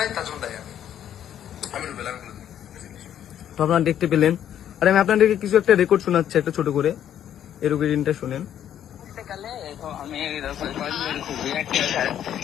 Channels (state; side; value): quieter; right; 10.3 dB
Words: তার জন্য দায়ী আমি রুবেল। তো আপনারা দেখতে পেলেন। আর আমি আপনাদেরকে কিছু একটা রেকর্ড শোনাচ্ছি, একটা ছোট করে, এর রেকর্ডিংটা শুনেন। আমি